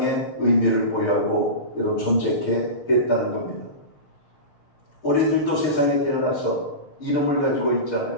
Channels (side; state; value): right; late; 6.6 ms